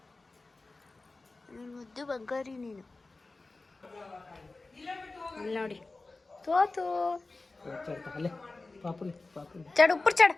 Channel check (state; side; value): quieter; right; 3.4 dB